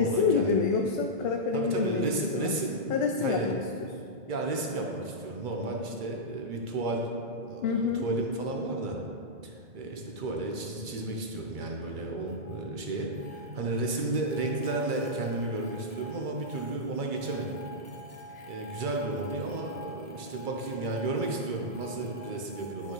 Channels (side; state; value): left; late; 2.3 ms